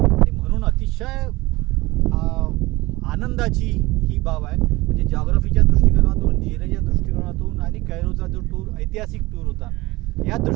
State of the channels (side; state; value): left; quieter; 20.7 dB